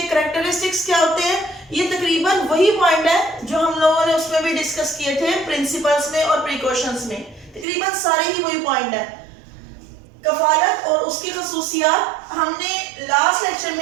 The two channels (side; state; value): left; drops out; at 7.7 s